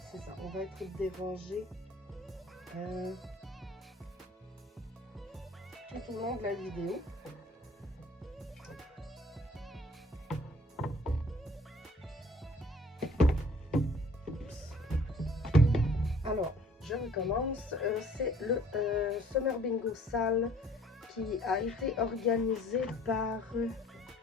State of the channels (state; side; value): normal; both; correlation 0.55